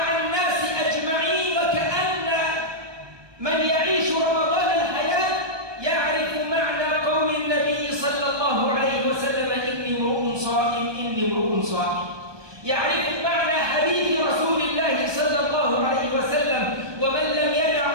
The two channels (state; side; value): late; left; 1.2 ms